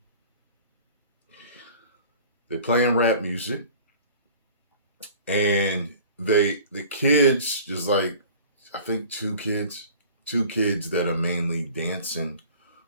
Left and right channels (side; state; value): both; inverted; correlation -0.45